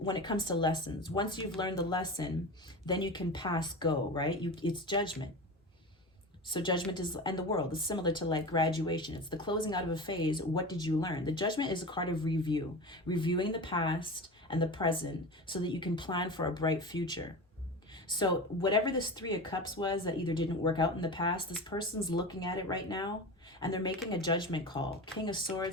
it comes to lessons, once you've learned the lesson, then you can pass go, right? It's Judgment. So Judgment is, and the World is similar to like graduation. It's the closing out of a phase. What did you learn? The Judgment is a card of review, reviewing the past and the present so that you can plan for a bright future. So whatever this Three of Cups was that either didn't work out in the past, this person's looking at it right now and they're making a judgment call. King of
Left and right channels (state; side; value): normal; both; correlation 0.29